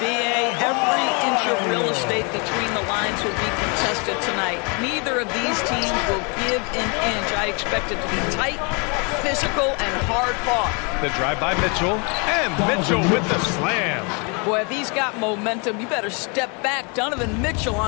every inch of real estate between the lines will be contested tonight. Neither of these teams will give an inch. I expect it to be tight, physical, and hard-fought. The drive by Mitchell, and Mitchell with the slam. Boy, if he's got momentum, you better step back. Donovan Mitchell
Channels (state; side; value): quieter; right; 33.4 dB